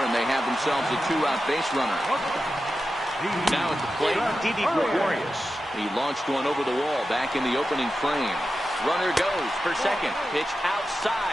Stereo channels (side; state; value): both; normal; correlation 0.91